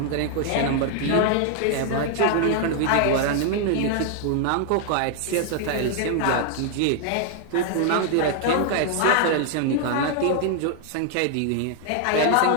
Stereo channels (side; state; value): both; different; correlation 0.00